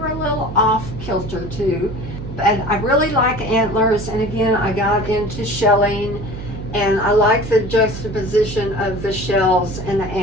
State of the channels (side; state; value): right; noise; hum, 10 dB below the sound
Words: a little off kilter too. And I really like antlers, and again, I got into shelling, and I like the juxtaposition of the shells and the